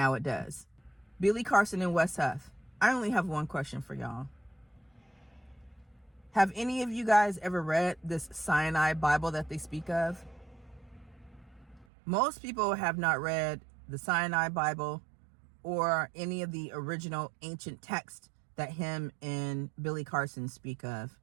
it does. Billy Carson and Wes Huff. I only have one question for y'all. Have any of you guys ever read this Sinai Bible that they speak of? Most people have not read the Sinai Bible or any of the original ancient texts that him and Billy Carson speak of,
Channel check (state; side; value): drops out; left; at 11.9 s